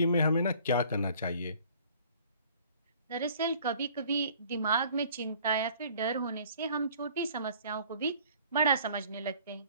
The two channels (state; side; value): inverted; both; correlation -0.53